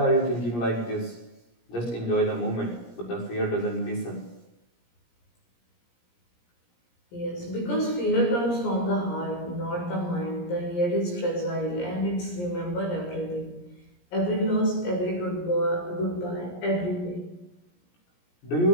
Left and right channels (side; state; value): right; late; 17 ms